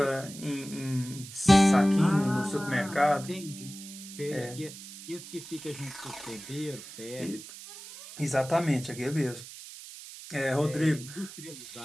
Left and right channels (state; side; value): noise; right; hiss, 14 dB below the sound